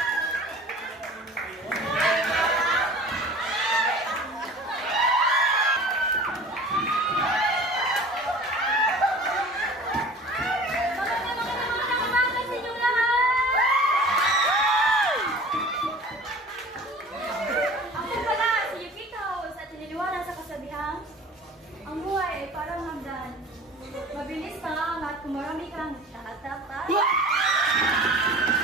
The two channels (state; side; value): normal; both; correlation 0.42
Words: Ang buhay ay parang hagdan. Mabilis pa at kung marami kang tatapat.